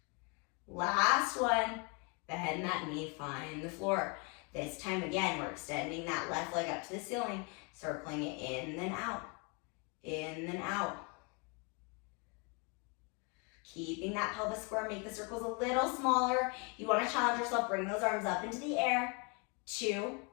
Last one. Bend that knee, find the floor. This time again, we're extending that left leg up to the ceiling, circling it in, then out. In, then out. Keeping that pelvis square, make the circles a little smaller. You want to challenge yourself, bring those arms up into the air. 2,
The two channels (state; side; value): quieter; right; 33.0 dB